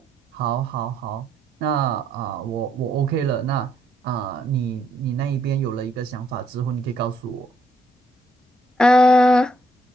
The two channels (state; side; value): normal; both; correlation 0.72